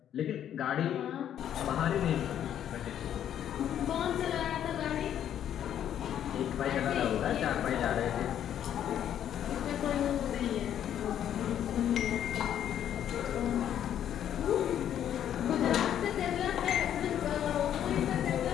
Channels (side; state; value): right; quieter; 10.2 dB